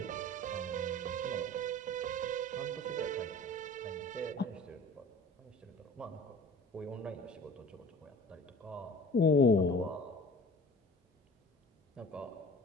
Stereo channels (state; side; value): normal; both; correlation 0.43